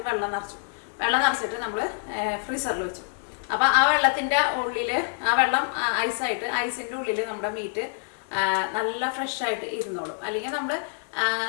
വെള്ളം നിറച്ചിട്ട് നമ്മൾ ഫ്രീസറിൽ വെച്ചു. അപ്പോൾ ആ വെള്ളത്തിൻ്റെ ഉള്ളിൽ, ആ വെള്ളം ഐസിൻ്റെ ഉള്ളിൽ നമ്മുടെ മീറ്റ് നല്ല ഫ്രഷായിട്ട് ഇരുന്നോളും. അല്ലെങ്കിൽ നമ്മൾ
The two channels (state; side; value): silent; right; digital silence